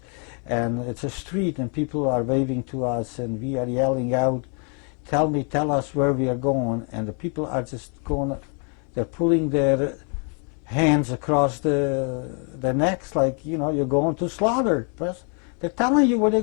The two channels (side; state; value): right; quieter; 39.4 dB